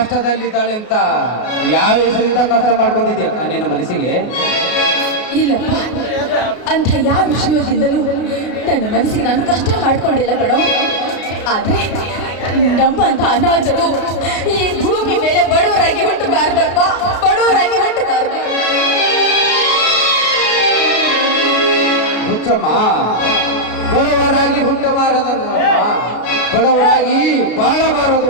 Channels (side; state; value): right; late; 33 ms